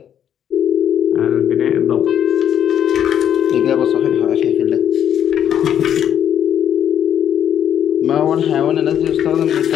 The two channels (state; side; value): quieter; right; 9.6 dB